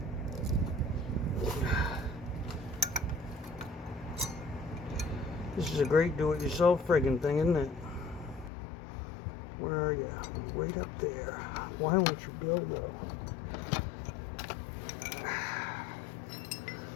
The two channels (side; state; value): right; drops out; at 8.5 s